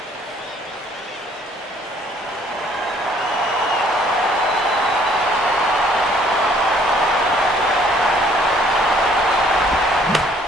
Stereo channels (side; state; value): both; normal; correlation 0.60